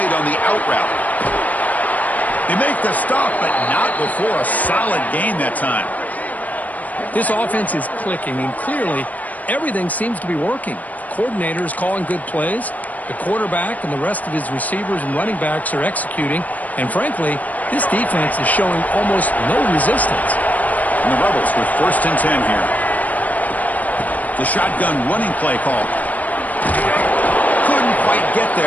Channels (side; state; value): right; late; 0.075 ms